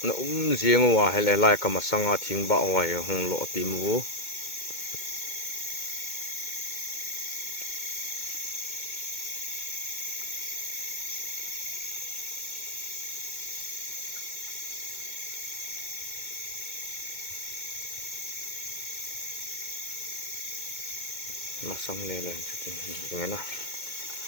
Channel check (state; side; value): late; right; 2.2 ms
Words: na riêng wa hele lai ka masanga thing ba wa he hong lo ti mu mà xong lên lên cho tình hình như thế nào